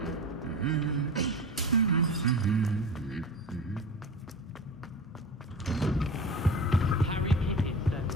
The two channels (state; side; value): normal; both; correlation 0.31